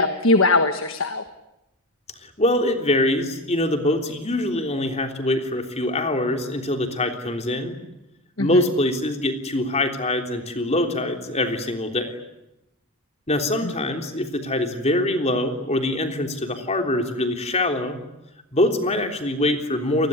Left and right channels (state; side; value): normal; both; correlation 0.26